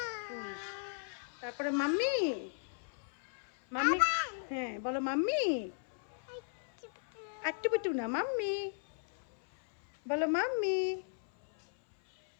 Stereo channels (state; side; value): silent; right; 54 dB below the other